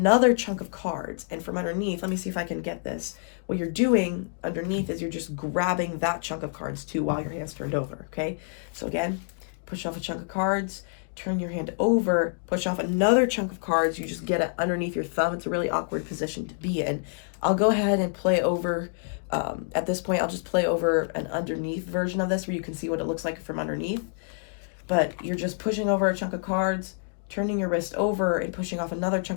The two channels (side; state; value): right; silent; digital silence